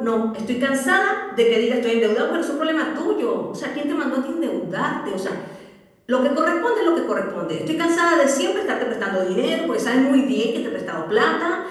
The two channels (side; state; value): both; identical; correlation 1.00